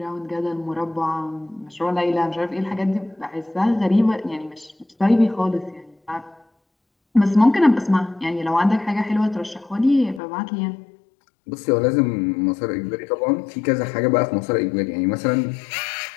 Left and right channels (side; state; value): right; drops out; at 10.2 s